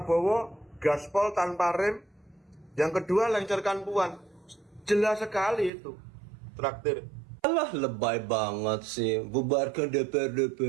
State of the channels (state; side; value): drops out; left; at 5.7 s